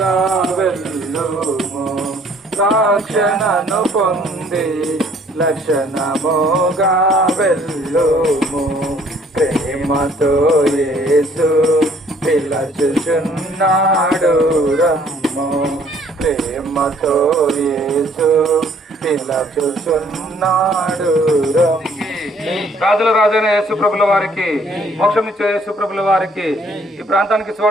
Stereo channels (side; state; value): both; normal; correlation 0.60